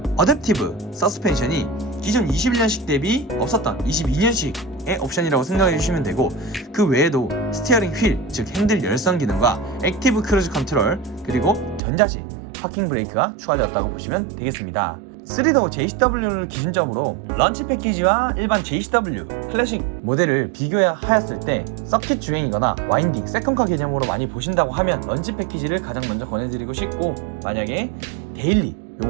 어댑티브 서스펜션이 기존 21년식 대비 없었던 22년식의 옵션이라고 생각해 주시면 되고, 그 외에도 스티어링 휠, 즉 핸들 열선 기능과 액티브 크루즈 컨트롤, 그리고 전자식 파킹 브레이크가 추가되었다고 보시면 되겠습니다. 3도어 JCW를 기준점으로 런치 패키지와 일반 JCW 클래식 모델을 비교하였을 때 서킷 주행이거나 와인딩, 세컨카 개념으로 많이 보신다고 하면 런치 패키지를 가장 먼저 권해드리고 싶고, 만약에 데일리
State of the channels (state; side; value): drops out; left; at 11.8 s